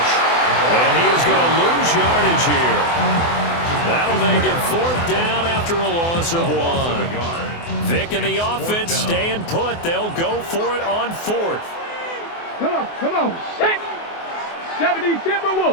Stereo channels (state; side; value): late; right; 24 ms